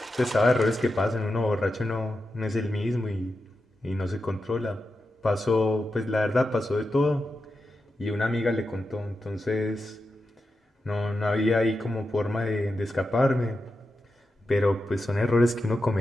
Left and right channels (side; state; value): both; normal; correlation 0.89